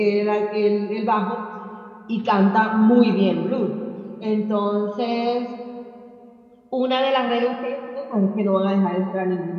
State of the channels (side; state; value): both; identical; correlation 1.00